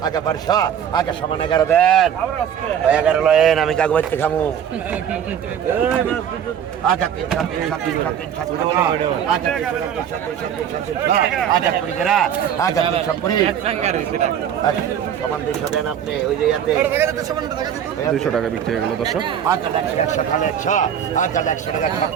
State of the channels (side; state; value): left; quieter; 9.0 dB